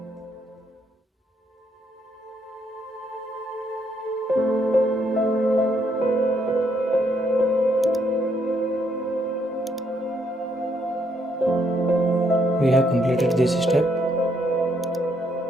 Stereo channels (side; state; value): both; normal; correlation 0.73